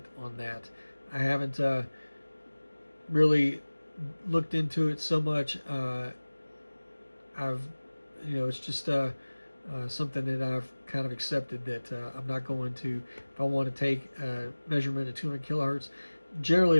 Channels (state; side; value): inverted; both; correlation -1.00